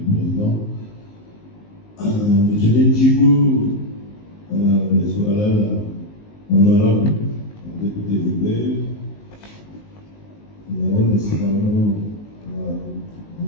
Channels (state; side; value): late; right; 19 ms